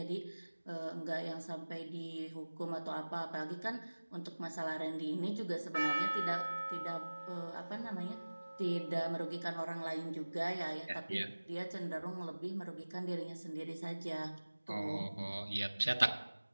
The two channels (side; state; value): both; inverted; correlation -1.00